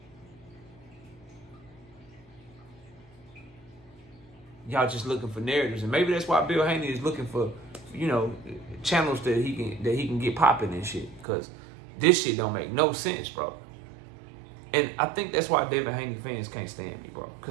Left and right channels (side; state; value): left; drops out; at 11.2 s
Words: Y'all just looking for narratives, and maybe that's why Bill Haney is looking for, channels that he can get popping and shit. Cause this shit don't make no sense, bro. And I think that's why Devin Haney fans can't stand me, bro.